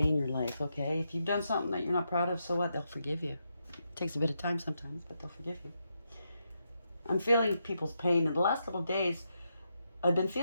your life, okay? If you've done something that you're not proud of, so what? They'll forgive you. It takes a bit of time sometimes, but they'll forgive you. I'm feeling people's pain. In the last couple of days, I've been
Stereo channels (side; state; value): both; inverted; correlation -0.83